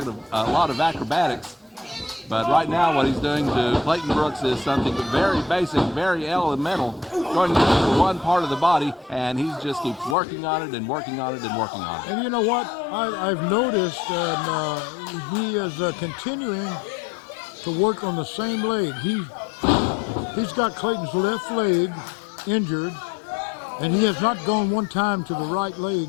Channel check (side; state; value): right; drops out; at 10.2 s